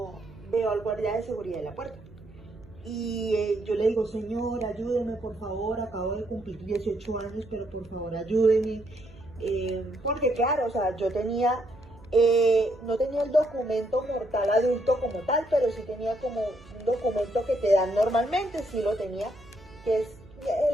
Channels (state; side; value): noise; right; hum, 23 dB below the sound